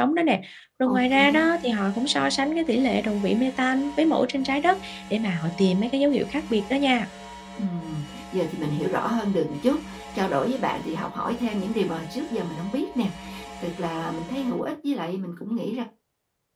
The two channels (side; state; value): both; identical; correlation 1.00